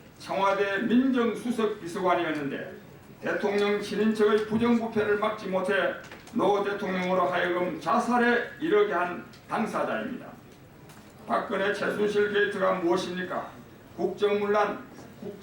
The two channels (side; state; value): both; identical; correlation 1.00